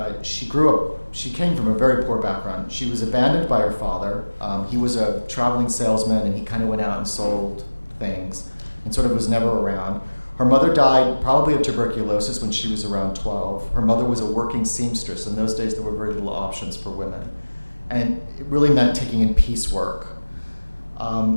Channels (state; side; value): inverted; both; correlation -1.00